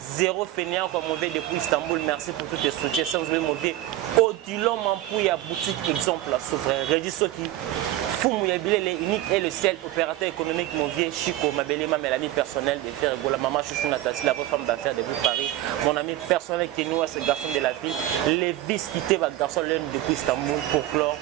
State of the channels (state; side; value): quieter; left; 14.5 dB